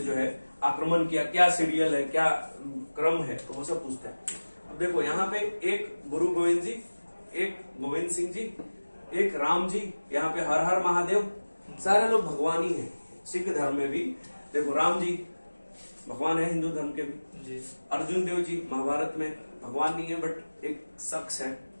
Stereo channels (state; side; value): inverted; both; correlation -1.00